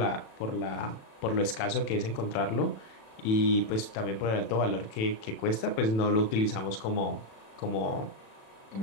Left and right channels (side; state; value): right; late; 36 ms